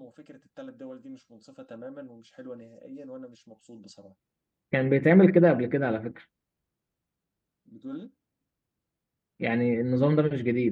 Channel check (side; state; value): both; identical; correlation 1.00